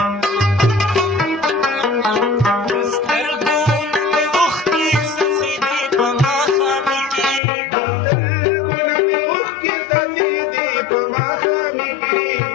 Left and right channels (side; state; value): right; drops out; at 7.4 s